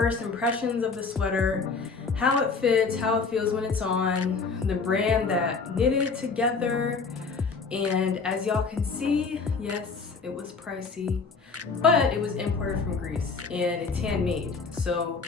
impressions of the sweater, how it fits, how it feels when it's on, the brand that knitted it together, and as y'all can see, yes, it was pricey, but it was imported from Greece and it's handmade. So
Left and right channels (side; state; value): right; quieter; 4.7 dB